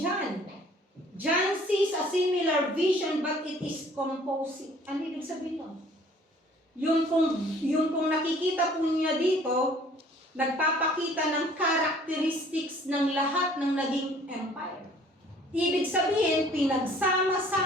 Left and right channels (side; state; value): both; normal; correlation 0.55